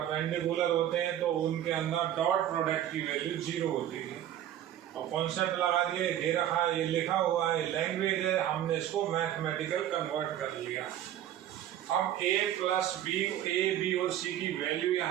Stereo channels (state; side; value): quieter; left; 11.5 dB